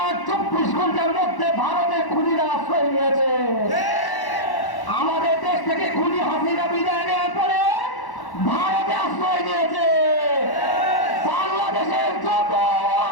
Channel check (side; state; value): right; late; 1.1 ms